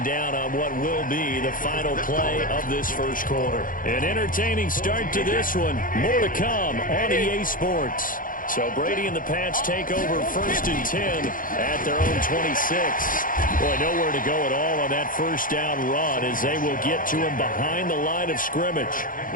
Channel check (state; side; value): late; right; 0.40 ms